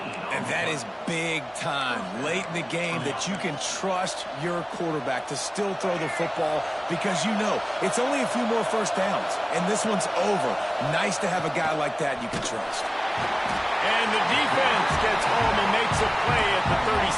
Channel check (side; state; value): both; identical; correlation 1.00